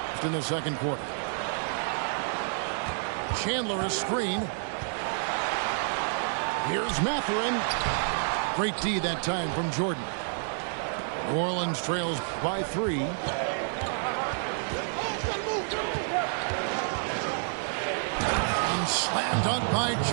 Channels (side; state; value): left; silent; digital silence